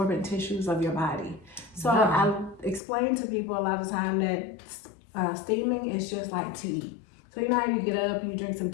tissues of your body. So I explain to people a lot of time that steaming is just like tea. So you know how you get up, you drink some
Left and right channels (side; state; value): right; drops out; at 2.8 s